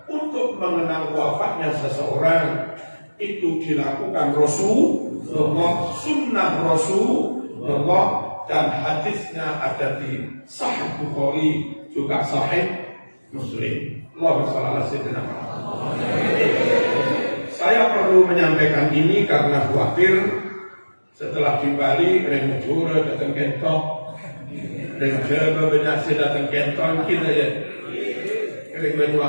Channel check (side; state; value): both; inverted; correlation -1.00